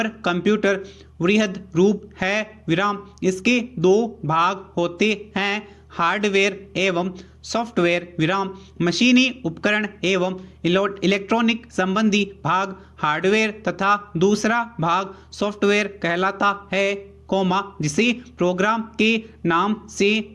कंप्यूटर वृहद रूप है, विराम। इसके दो भाग होते हैं, हार्डवेयर एवं सॉफ्टवेयर, विराम। मशीनी उपकरण एवं इलेक्ट्रॉनिक संबंधी भाग हार्डवेयर तथा दूसरा भाग सॉफ्टवेयर कहलाता है, कोमा जिसे प्रोग्राम के नाम से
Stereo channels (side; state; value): both; identical; correlation 1.00